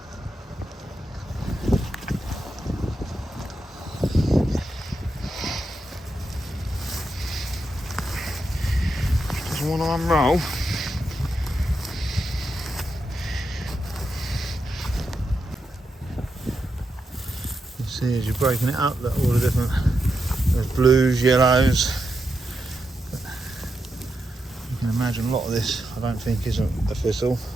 Want to unroll. You see as you're breaking it up that all the different there's blues, yellows. But you can imagine a lot of this I don't think isn't a thistle.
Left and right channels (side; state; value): both; normal; correlation 0.85